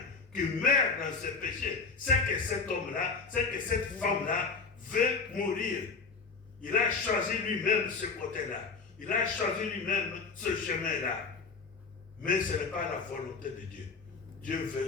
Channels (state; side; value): quieter; right; 4.7 dB